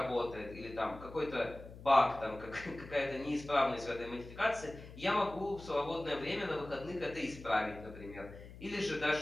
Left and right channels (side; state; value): left; noise; hum, 15 dB below the sound